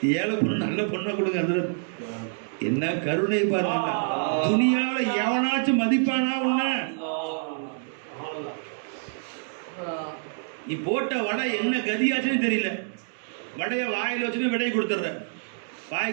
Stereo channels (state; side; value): silent; left; digital silence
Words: ஏழை பொண்ணு நல்ல பொண்ணை கொடுங்க. அது என்ன கருணை பாருங்க! துணியால எவனாச்சும் மதிப்பானா? உன்ன நீ போட்ட வடை என்ன கதியாச்சுன்னு தெரியல. வடையை வாயில் வச்சுட்டு விடையை கொடுத்துட்ற,